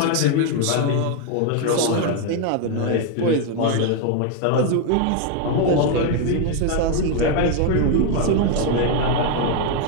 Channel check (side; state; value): both; different; correlation 0.01